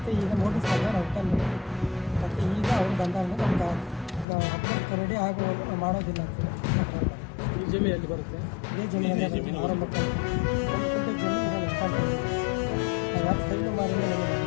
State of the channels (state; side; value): drops out; right; at 4.2 s